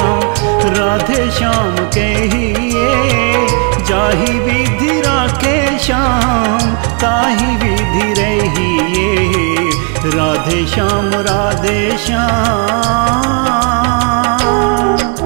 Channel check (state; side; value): quieter; left; 36.6 dB